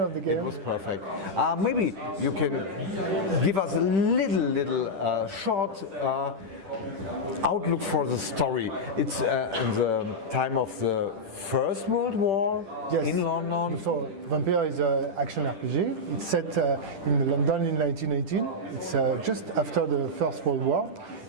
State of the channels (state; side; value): late; left; 10 ms